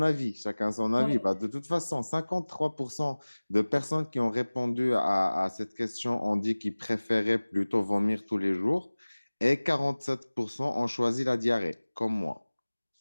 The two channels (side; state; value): both; inverted; correlation -1.00